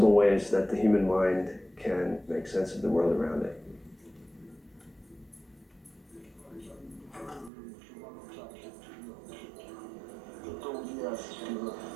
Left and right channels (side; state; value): left; drops out; at 7.5 s